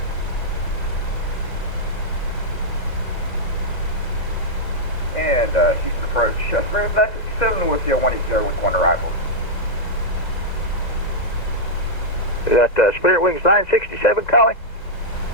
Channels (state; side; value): late; right; 2.0 ms